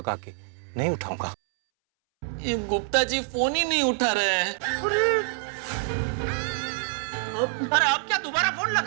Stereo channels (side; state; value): left; silent; 61 dB below the other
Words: के। नहीं उठाऊंगा। ये गुप्ता जी फोन ही नहीं उठा रहे हैं। अरे अब क्या दोबारा फोन